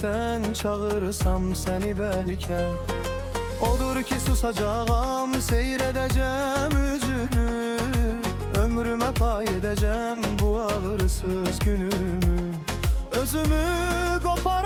çağırırsam səni bəlkə. Odur ki susacağam, seyr edəcəm üzünü, ömrümə pay edəcəm bu ağırsız günümü. Özümü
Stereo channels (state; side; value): identical; both; correlation 1.00